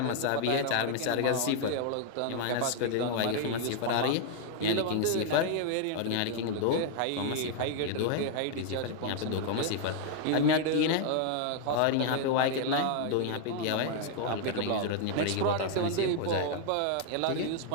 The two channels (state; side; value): different; both; correlation 0.00